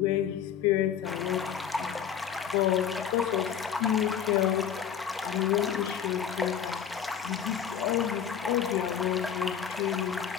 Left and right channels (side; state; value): right; quieter; 8.4 dB